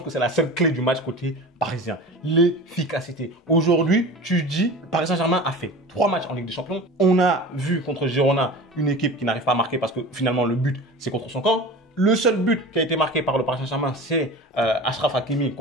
que c'est la seule clé du match côté parisien. L'efficacité. Aujourd'hui, tu dis, Paris Saint-Germain a fait 3 matchs en Ligue des Champions. On a vu contre Girona une équipe qui n'arrive pas à marquer parce que finalement, le but, c'est contre son camp. Le seul but qui a été marqué par le Paris Saint-Germain, c'est Achraf Hakimi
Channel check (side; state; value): both; normal; correlation 0.35